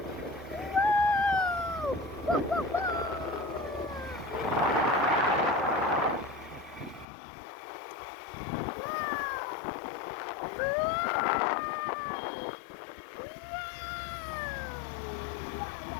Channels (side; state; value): right; drops out; at 7.1 s